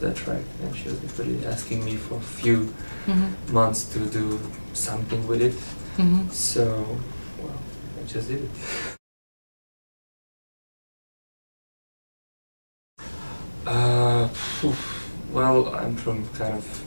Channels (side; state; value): both; inverted; correlation -1.00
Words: track, and she was really asking me for a few months to do something with it. So, well, I just did it. Well, I'm from kind of